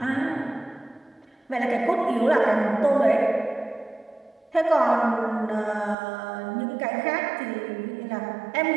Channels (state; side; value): drops out; left; at 6.0 s